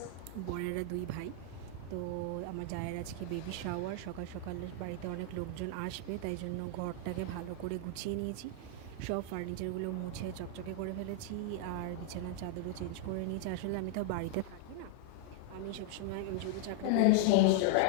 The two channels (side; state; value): both; different; correlation 0.00